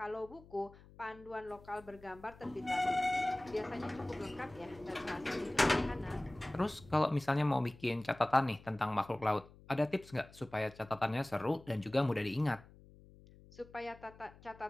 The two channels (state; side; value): noise; left; hum, 22 dB below the sound